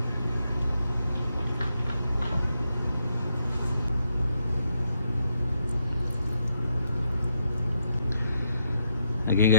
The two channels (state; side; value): inverted; both; correlation -0.79